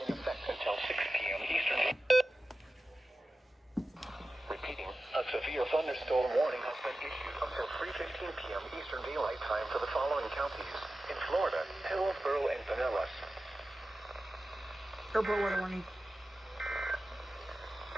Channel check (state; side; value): normal; both; correlation 0.94